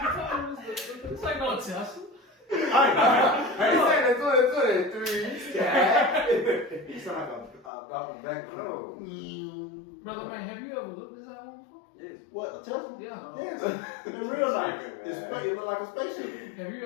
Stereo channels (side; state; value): right; drops out; at 7.7 s